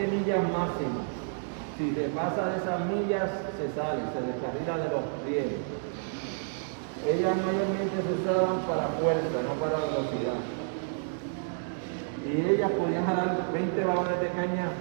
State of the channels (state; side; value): silent; left; digital silence